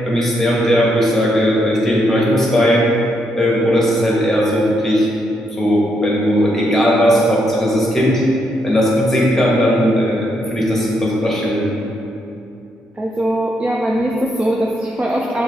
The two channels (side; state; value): both; normal; correlation 0.78